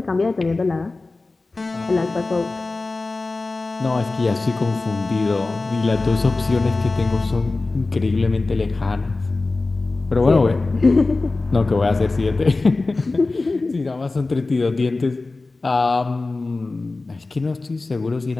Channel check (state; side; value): quieter; right; 3.4 dB